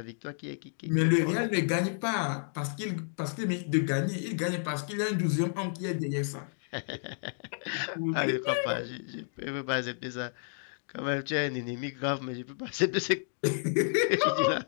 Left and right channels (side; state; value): right; silent; digital silence